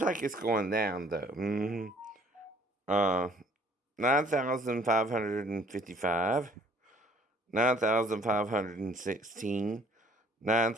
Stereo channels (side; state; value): both; normal; correlation 0.58